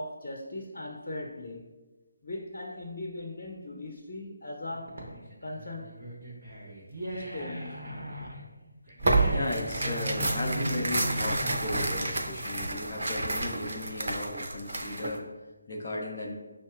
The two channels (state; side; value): inverted; both; correlation -0.82